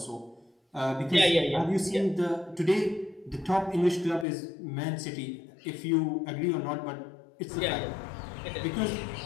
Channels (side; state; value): right; drops out; at 4.2 s